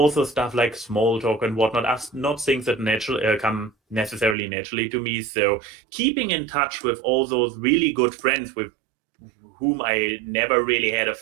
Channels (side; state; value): left; drops out; at 4.4 s